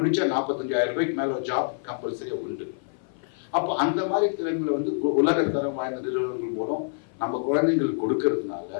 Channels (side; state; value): right; silent; 56 dB below the other